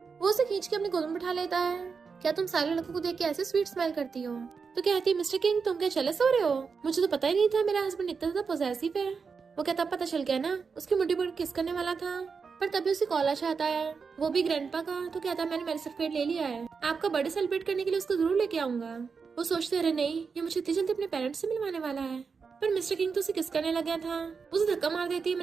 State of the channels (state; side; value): quieter; left; 5.4 dB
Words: वो उसे खींच के अपनी गोद में बिठा लेता है। क्या तुम सारे लड़कों को देख के ऐसे स्वीट स्मेल करती हो। तो कहती है मिस्टर किंग तुम क्या जेलस हो रहे हो, मुझे तो पता ही नहीं था मेरा हस्बैंड इतना ज्यादा पॉसेसिव है। वो कहता पता चल गया ना, उसकी मुट्ठी पर किस करने वाला था, पर तभी उसे कॉल आता है, वो भी ग्रैंडपा का। तो कहता है मैंने मैरिज सर्टिफिकेट ले लिया है, आपका बर्थडे सेलिब्रेट करने के लिए उसको जरूर लेके आऊंगा। वो सोचते रहे नहीं, ये मुझे इतनी जल्दी अपने पेरेंट्स से मिलवाने वाला है। पर मिस्टर किंग तो उसे किस करने लग गया था। उसे धक्का मार देती है,